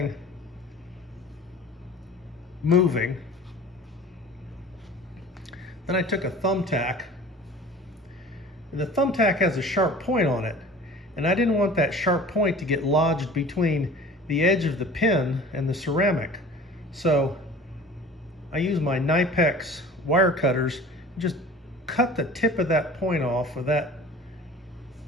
moving. Then I took a thumbtack, and the thumbtack has a sharp point on it, and I didn't want that sharp point to get lodged between the edge of the pin and the ceramic. So I used my Knipex wire cutters and just cut the tip of that point off of that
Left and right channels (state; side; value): normal; both; correlation 0.42